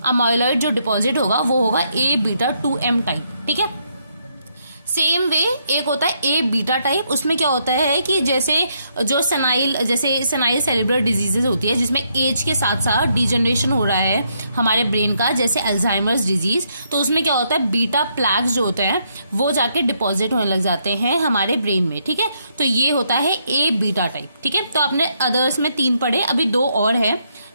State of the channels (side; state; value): both; inverted; correlation -0.75